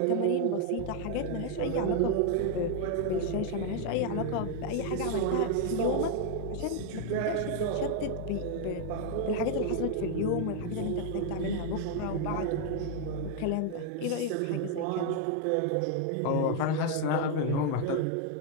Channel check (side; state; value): both; different; correlation 0.00